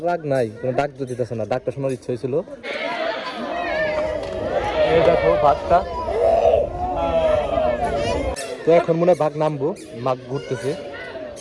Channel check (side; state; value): both; identical; correlation 1.00